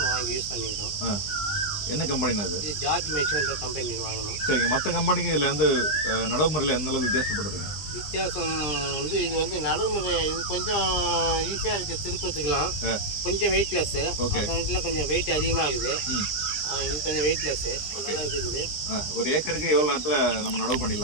வாங்கி யூஸ் பண்ணிக்கிட்டோம். என்ன கம்பெனிண்ணா இது? இது ஜார்ஜ் மிஷின்ற கம்பெனி வாங்கணும். சரிங்க. மற்ற கம்பெனிக்கு இதில் வந்து நடைமுறையில் எந்த அளவுக்கு வித்தியாசப்படுதுங்க? வித்தியாசம் வந்து இது வந்து நடைமுறை இது கொஞ்சம் ஈஸியாக இருக்குது, திருப்பத்துக்கலாம். கொஞ்சம் வெயிட்லெஸ்ஸு. மற்ற கொஞ்சம் வெயிட் அதிகமாகுது. இது கொஞ்சம் வெயிட்லெஸ்ஸு, நல்லா இருக்குது. ஒரு ஏக்கருக்கு எவ்வளோ நேரத்தில் நம்ம நடவு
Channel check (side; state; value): right; late; 20 ms